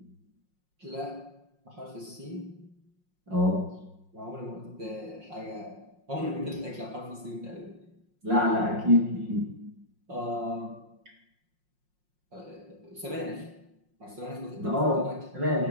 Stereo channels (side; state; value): left; late; 5.6 ms